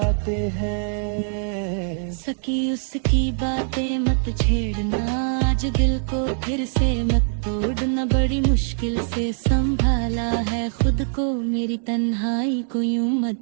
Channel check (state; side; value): silent; left; 64 dB below the other